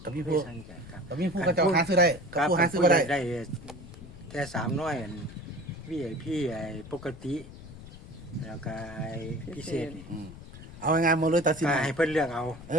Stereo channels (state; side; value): noise; left; rumble, 16 dB below the sound